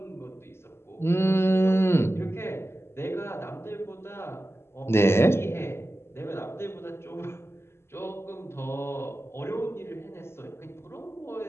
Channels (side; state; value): right; late; 0.12 ms